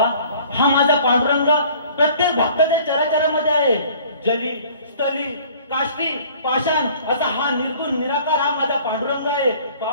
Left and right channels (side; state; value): both; inverted; correlation -0.52